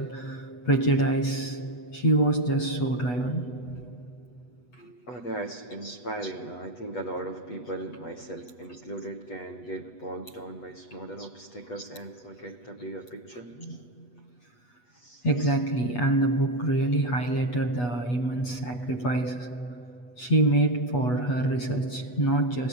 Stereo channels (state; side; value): late; right; 8.2 ms